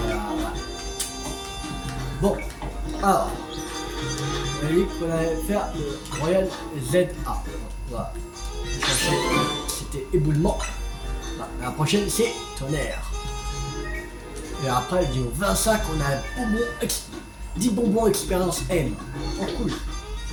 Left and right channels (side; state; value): both; identical; correlation 1.00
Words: voilà. Bon, alors, on a dit qu'on allait faire le Royal ZA. Voilà. C'était éboulement. Voilà. La prochaine, c'est tonnerre. Et après, vidéo 25, on a 10 bonbons expérience M. Oh, cool.